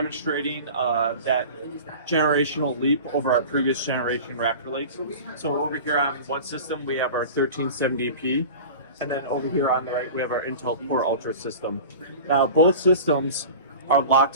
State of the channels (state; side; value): inverted; both; correlation -0.36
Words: that generational leap over our previous generation Raptor Lakes. So over here on one system we have our 1370p, and then over here on the right we have our Intel Core Ultra system. Now both systems are locked